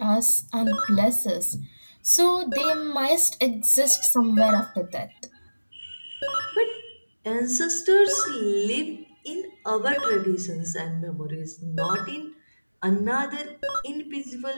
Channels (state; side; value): inverted; both; correlation -1.00